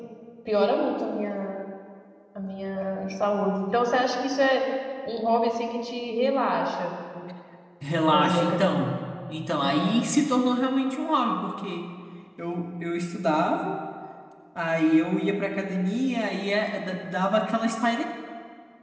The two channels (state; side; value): identical; both; correlation 1.00